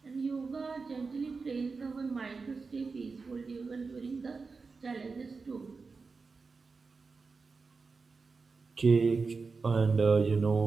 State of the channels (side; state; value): left; quieter; 4.5 dB